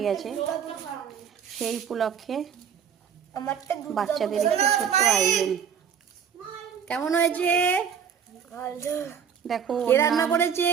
গেছে। সেই উপলক্ষে বাচ্চাদের একটি ছোট্ট আয়োজন। কেমন হয়েছে দেখো। কে রান্না করেছে?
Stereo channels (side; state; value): left; quieter; 7.7 dB